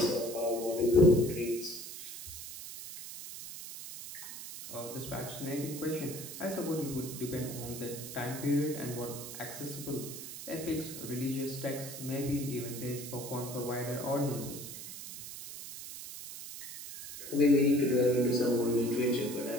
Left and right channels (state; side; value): noise; right; hiss, 10 dB below the sound